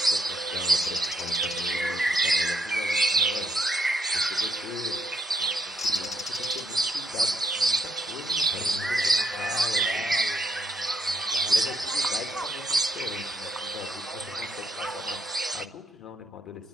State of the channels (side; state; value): both; normal; correlation 0.75